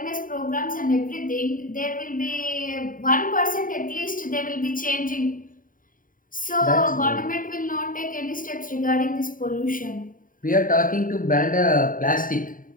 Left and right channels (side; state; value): right; late; 0.40 ms